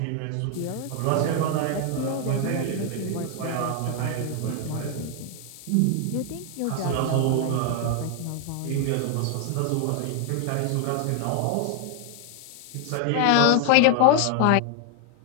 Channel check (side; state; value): both; different; correlation 0.00